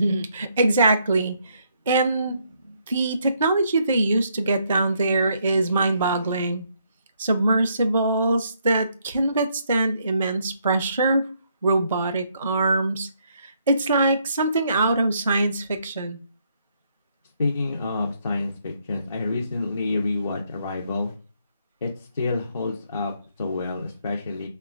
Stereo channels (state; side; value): inverted; both; correlation -0.72